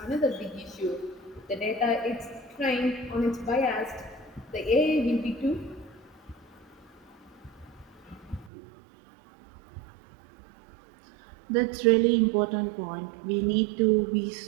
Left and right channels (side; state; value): left; drops out; at 8.5 s